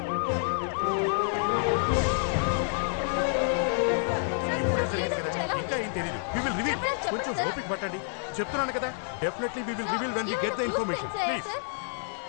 ఇంకా ఏం తెలియదు. We will reveal. కొంచెం ఓపిక పట్టండి. చెప్తున్నాను కదా, definitely we will reveal when we get the information. Please.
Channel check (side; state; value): right; silent; 59 dB below the other